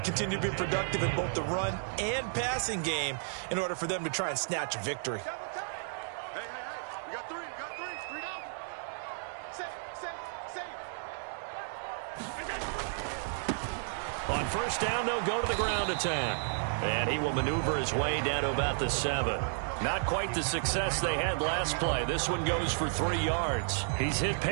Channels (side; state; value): left; silent; digital silence